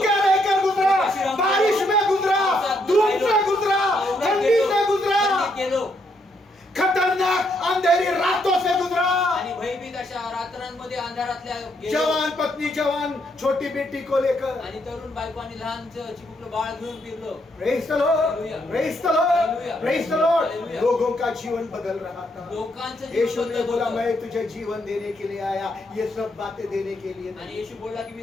रहकर गुजरा, बारिश में गुजरा, धूप से गुजरा, ठंडी से गुजरा, गेलो खतरनाक अंधेरी रातों से गुजरा। आणि भयभीत अशा रात्रांमध्ये अंधारातल्या गेलो. जवान पत्नी, जवान छोटी बेटी को लेकर, आणि तरुण बायको आणि लहान चिमुकलं बाळ घेऊन फिरलो. Praise the Lord, Praise the Lord, Praise the Lord। लोगों का जीवन बदल रहा था। लोकांचं जीवन यीशु ने बदलत बोला होतं. मैं तुझे जीवन देने के लिए आया, ये सब बातें देने के लिए आणि नहीं। येशू बोलला की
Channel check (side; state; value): both; normal; correlation 0.75